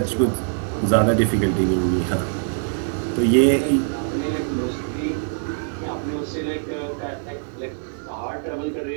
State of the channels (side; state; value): left; silent; 63 dB below the other